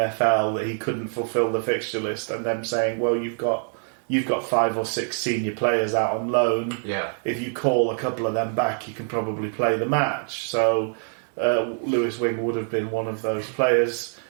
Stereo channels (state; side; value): silent; left; 55 dB below the other